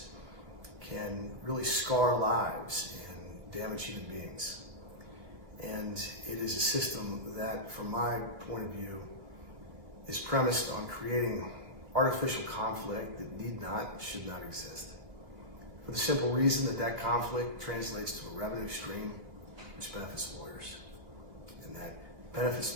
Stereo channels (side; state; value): left; late; 2.6 ms